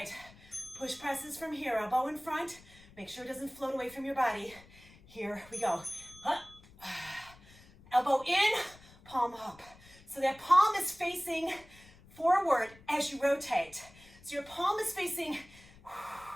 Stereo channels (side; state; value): left; noise; rumble, 24 dB below the sound